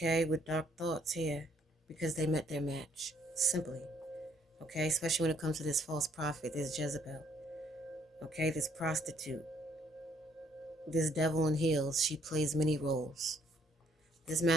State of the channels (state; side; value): normal; both; correlation 0.67